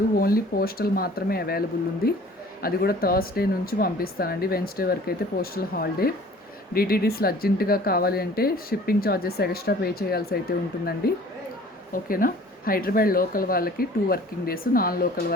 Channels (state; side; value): normal; both; correlation 0.49